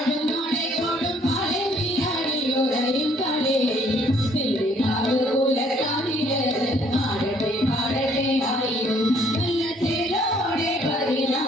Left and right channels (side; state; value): both; normal; correlation 0.63